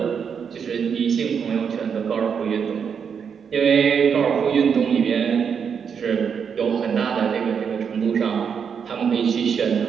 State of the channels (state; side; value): quieter; left; 6.9 dB